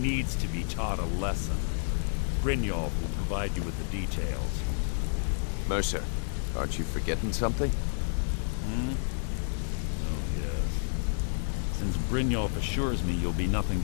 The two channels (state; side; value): silent; right; digital silence